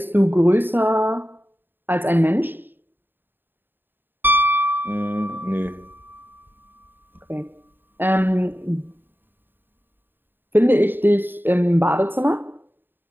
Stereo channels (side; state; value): left; late; 0.095 ms